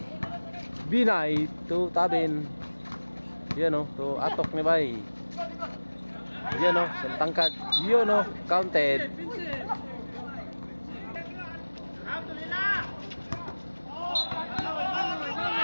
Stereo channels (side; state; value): both; inverted; correlation -1.00